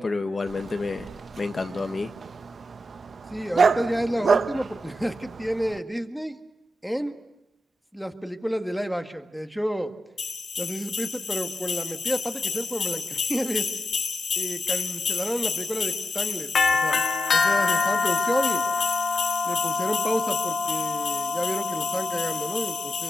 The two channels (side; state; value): both; normal; correlation 0.90